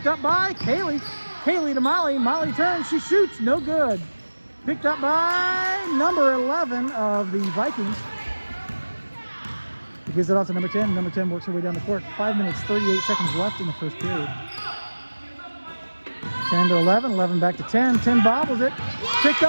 up by Kaylee. Kaylee to Molly. Molly turns. She shoots. No good. Picked up by number 11 of the Vikings. He gives it off to number 10. Number 10 works her way down the court. 5 minutes, 38 seconds left in the first period. 10 to 11. 11 back to 10. 10 bobbles it. Picked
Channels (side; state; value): both; inverted; correlation -1.00